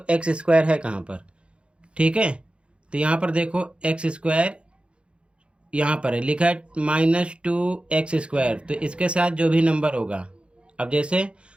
x² है कहाँ पर, ठीक है। तो यहाँ पर देखो x² यहाँ पर है, लिखा है -2x²। तो इसके साथ जो भी नंबर होगा, अब जैसे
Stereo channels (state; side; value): late; left; 0.058 ms